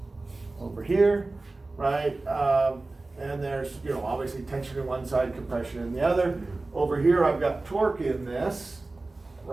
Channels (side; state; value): left; quieter; 3.2 dB